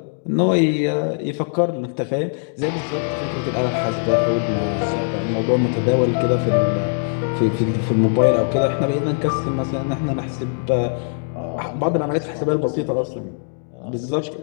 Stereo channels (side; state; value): right; silent; digital silence